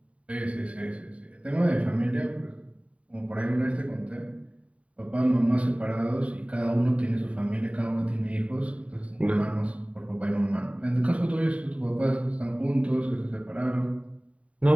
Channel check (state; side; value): late; left; 0.065 ms